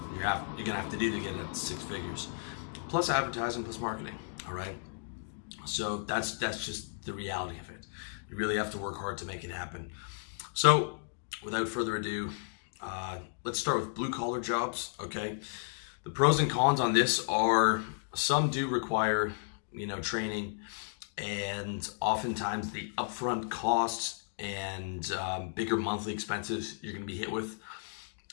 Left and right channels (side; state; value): right; silent; digital silence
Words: you're gonna have to do to get at six figures, plus advertising, plus marketing. All right, so that's just the reality of it. You really have to work hard to make it happen. So without further ado, let's start with blue collar jobs. Okay, the pros and cons on this are some do require training, and oftentimes the upfront costs and bigger monthly expenses you're going to be hit with